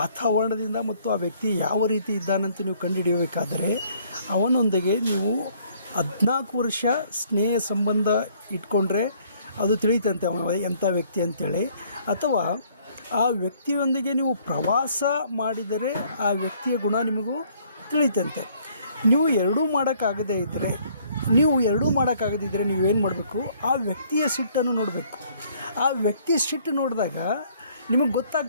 ಮತ್ತು ಆ ವ್ಯಕ್ತಿ ಯಾವ ರೀತಿ ಇದ್ದಾನಂತ ನೀವು ಕಂಡುಹಿಡಿಯಬೇಕಾದರೆ ಅವನೊಂದಿಗೆ ನೀವು 14 ವರ್ಷ ಸ್ನೇಹ ಸಂಬಂಧ ಇಟ್ಕೊಂಡ್ರೆ ಅದು ತಿಳಿಯುತ್ತಂತೆ ಅವನ ಎಂಥ ವ್ಯಕ್ತಿ ಅಂತೇಳಿ. ಅಥವಾ ಆ ವ್ಯಕ್ತಿಯೊಂದಿಗೆ ನೀವು ಪ್ರವಾಸ ಮಾಡಿದರೆ ಆ ವ್ಯಕ್ತಿಯ ಗುಣ ನಿಮಗೂ ತಿಳಿಯುತ್ತಂತೆ. ನೀವು ಎರಡೂ ಮಾಡೋಕ್ಕಾಗದೇ ಇದ್ದರೆ ನೀವೇನು ಮಾಡಬೇಕು, ಆ ವ್ಯಕ್ತಿಯ ಸಿಟ್ಟನ್ನು ನೋಡಬೇಕು. ಆ ವ್ಯಕ್ತಿ ಸಿಟ್ಟು ನೋಡಿದಾಗ ನಿಮಗೆ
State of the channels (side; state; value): both; inverted; correlation -0.62